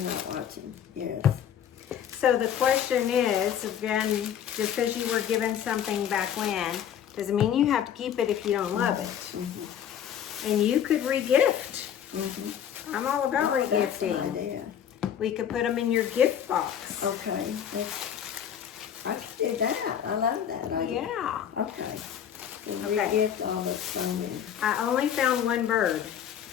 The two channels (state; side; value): quieter; right; 9.2 dB